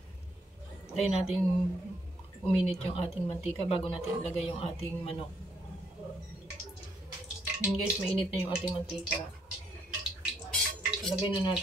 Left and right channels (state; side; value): normal; both; correlation 0.72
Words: Tayo natin uminit yung ating mantika bago natin ilagay yung ating manok. Yun guys, mainit na yung ating mantika. Ilagay na